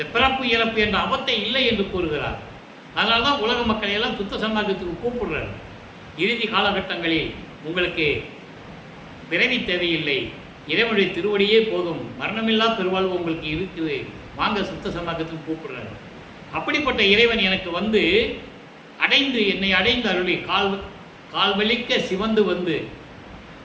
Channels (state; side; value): identical; both; correlation 1.00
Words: பிறப்பு இறப்பு என்ற அவத்தை இல்லை என்று கூறுகிறார். அதனால்தான் உலக மக்களை எல்லாம் சுத்த சன்மார்க்கத்துக்கு கூப்பிடுறார். இறுதி காலகட்டங்களில் உங்களுக்கு பிறவி தேவையில்லை, இறைவனுடைய திருவடியே போதும், மரணமில்லா பெருவாழ்வு உங்களுக்கு இருக்குது, வாங்க சுத்த சன்மார்க்கத்துக்கு கூப்பிடுறாரு. அப்படிப்பட்ட இறைவன் எனக்கு வந்து அடைந்து என்னை அடைந்து அருளி கால்வலிக்க சிவந்து வந்து